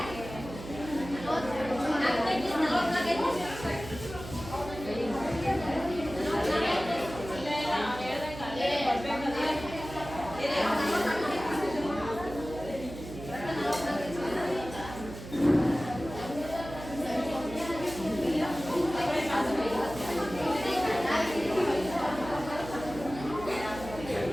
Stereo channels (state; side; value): noise; right; hum, 12 dB below the sound